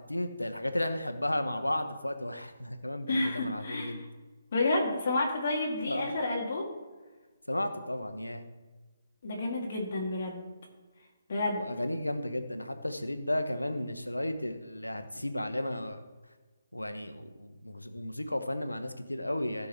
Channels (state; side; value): inverted; both; correlation -0.86